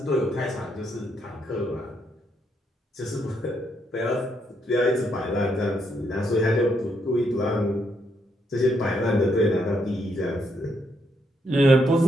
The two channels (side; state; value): both; normal; correlation 0.76